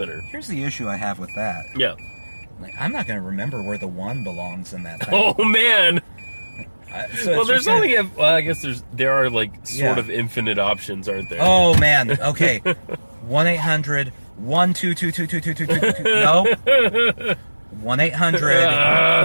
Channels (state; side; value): inverted; both; correlation -1.00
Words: Here's the issue I have with that. Yeah. I'm not going to remember where the 1 belongs in that thing. Oh man. Well, there's only I guess there are sort of infinite options, aren't there? Oh man. Okay. 1-800-122222222. No.